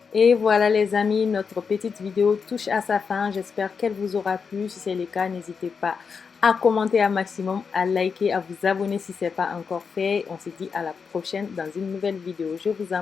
Et voilà les amis, notre petite vidéo touche à sa fin. J'espère qu'elle vous aura plu. Si c'est le cas, n'hésitez pas à commenter un maximum, à liker, à vous abonner si ce n'est pas encore fait. On se dit à la prochaine dans une nouvelle vidéo. Je vous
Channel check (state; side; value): quieter; right; 5.7 dB